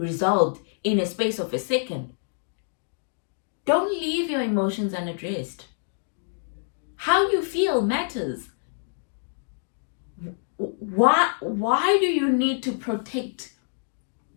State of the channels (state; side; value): silent; right; digital silence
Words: in a space of a second. Don't leave your emotions unaddressed. How you feel matters. Why do you need to protect?